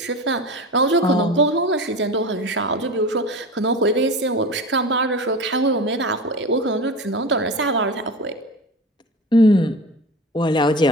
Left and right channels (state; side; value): normal; both; correlation 0.30